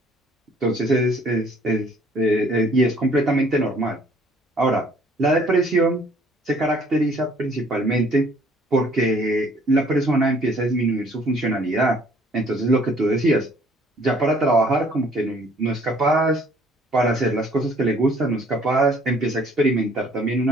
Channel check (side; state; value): both; normal; correlation 0.59